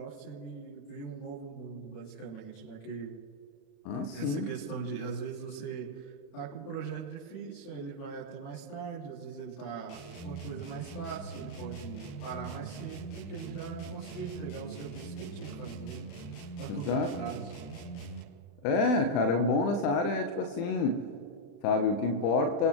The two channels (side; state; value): right; late; 35 ms